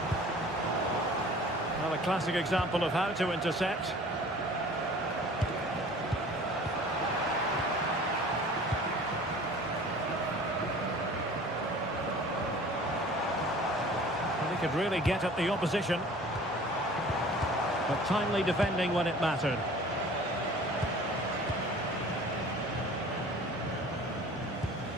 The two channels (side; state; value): both; normal; correlation 0.46